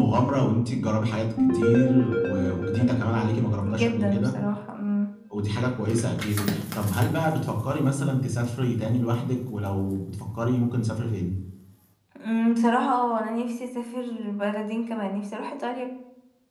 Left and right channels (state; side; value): identical; both; correlation 1.00